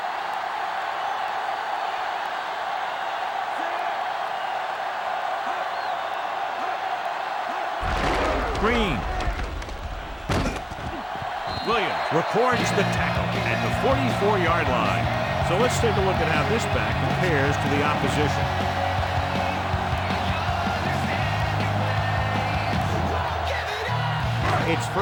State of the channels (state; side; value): identical; both; correlation 1.00